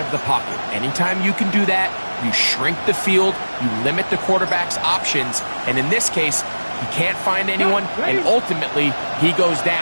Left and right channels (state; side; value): inverted; both; correlation -1.00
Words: the pocket. Anytime you can do that, you shrink the field, you limit the quarterback's options, and in this case, he can't find anyone, and ultimately, he goes